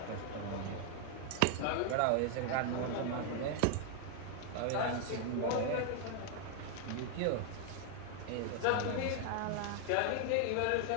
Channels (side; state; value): both; different; correlation 0.00